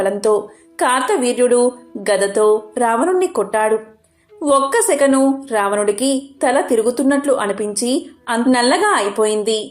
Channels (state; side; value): identical; both; correlation 1.00